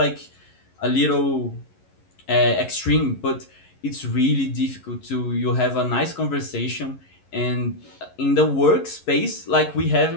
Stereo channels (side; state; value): right; late; 11 ms